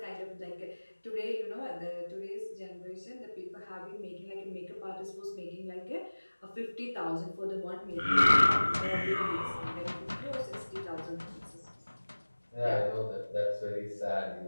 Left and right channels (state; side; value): inverted; both; correlation -1.00